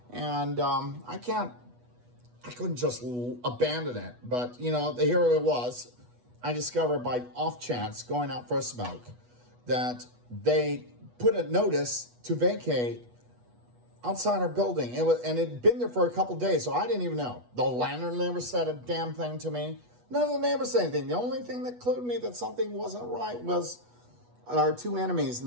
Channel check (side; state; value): left; late; 8.2 ms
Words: And I couldn't just abandon it. But, here it was. I discovered by off chance, going out for a smoke, that they put a notice to vacate outside our building. It had been there for a couple days, so I didn't even know. The landlord never said a damn thing to me. None of the neighbors said anything. The only thing that clued me that something wasn't right was our two enemies in